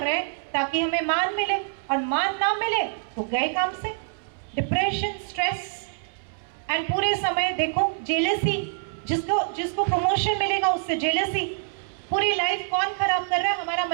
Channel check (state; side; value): silent; left; 61 dB below the other